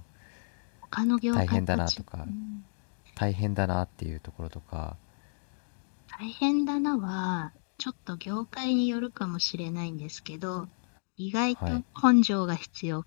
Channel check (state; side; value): silent; right; digital silence